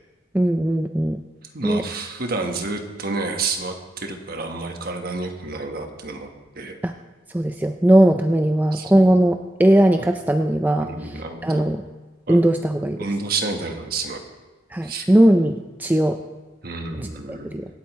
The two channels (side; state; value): both; normal; correlation 0.90